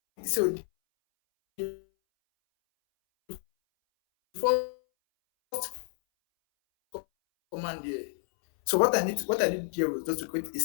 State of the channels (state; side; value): silent; right; 58 dB below the other